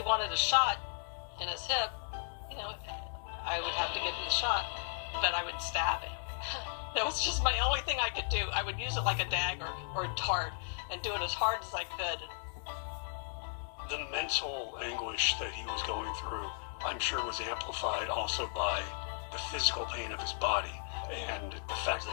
wanted a shot in his hip, you know, I would have to give him the shot, but I would stab him. That was just my only thing I could do. I would use it like a dagger or a dart and do it as hard as I could. The mental anguish that he was going through, I'm sure, was amplified also by the physical pain of his body and the fact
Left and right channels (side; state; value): right; silent; digital silence